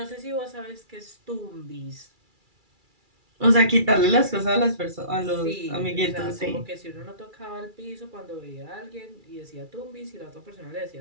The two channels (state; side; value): late; left; 2.3 ms